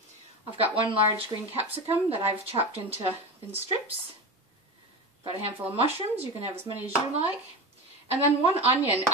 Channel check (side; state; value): both; normal; correlation 0.24